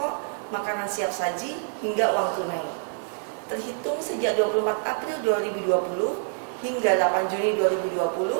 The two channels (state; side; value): silent; left; digital silence